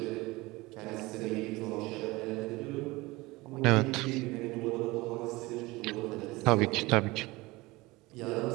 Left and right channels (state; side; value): quieter; left; 21.6 dB